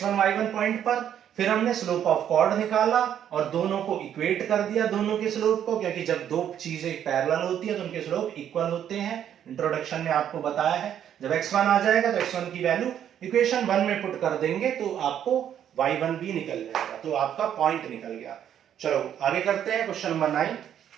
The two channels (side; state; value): left; quieter; 9.8 dB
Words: y1 पॉइंट पर, फिर हमने स्लोप ऑफ कॉर्ड निकाला और दोनों को इक्वेट कर दिया, दोनों के स्लोप को, क्योंकि जब दो चीजें पैरेलल होती है तो उनके स्लोप इक्वल होते हैं। इंट्रोडक्शन में आपको बताया है, जब x1 आ जाएगा तो x1 की वैल्यू इक्वेशन 1 में पुट कर देंगे तो आपको y1 भी निकल जाएगा, तो आपका पॉइंट निकल गया। चलो आगे करते हैं क्वेश्चन नंबर 9,